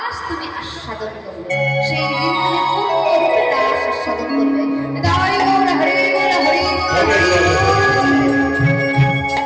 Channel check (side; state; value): both; identical; correlation 1.00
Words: তুমি আস্বাদন করবে। সেই দিন তুমি পূর্ণরূপে রাস আস্বাদন করবে।